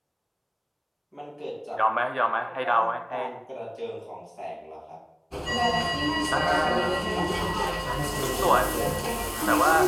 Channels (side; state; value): both; identical; correlation 1.00